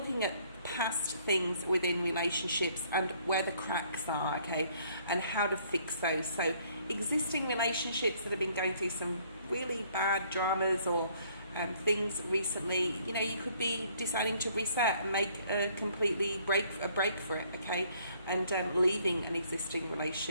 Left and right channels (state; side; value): inverted; both; correlation -0.63